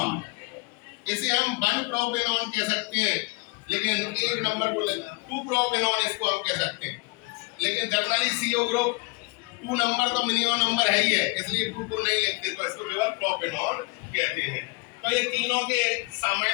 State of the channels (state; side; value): quieter; right; 29.3 dB